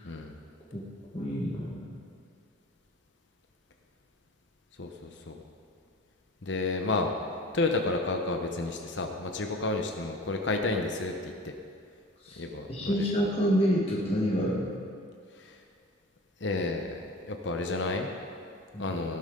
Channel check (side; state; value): both; normal; correlation 0.39